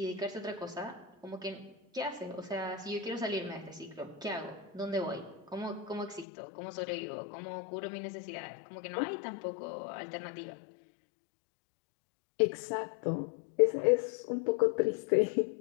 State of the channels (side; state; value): right; drops out; at 6.2 s